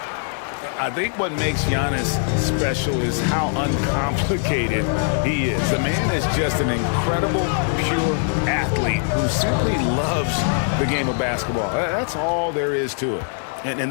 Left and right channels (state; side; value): silent; right; 64 dB below the other